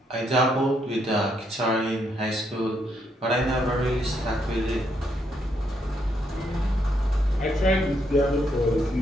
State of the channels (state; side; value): normal; both; correlation 0.76